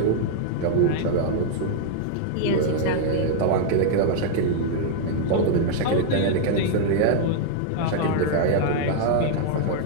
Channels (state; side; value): different; both; correlation 0.00